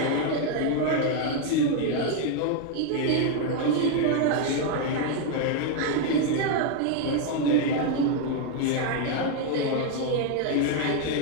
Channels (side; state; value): both; different; correlation 0.01